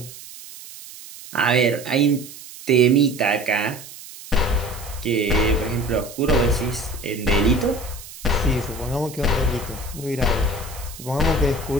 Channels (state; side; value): noise; right; hiss, 16 dB below the sound